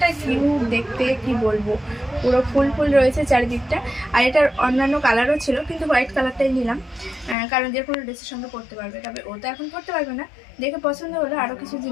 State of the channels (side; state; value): right; drops out; at 7.4 s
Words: কিউট দেখতে, কি বলবো। পুরো ফুল ফুল রয়েছে চারিদিকটা। আর এটার অন্যান্য কালারও ছিল, কিন্তু হোয়াইট কালারটাই নিলাম, কারণ যে কোনো ড্রেসের সঙ্গে পরতে পারবে। তবে ও তো এখন পরতে পারবে না, দেখে পছন্দ হলো, আরও কিছু